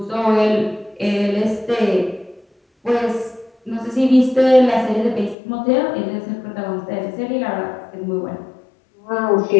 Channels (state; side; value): drops out; right; at 5.4 s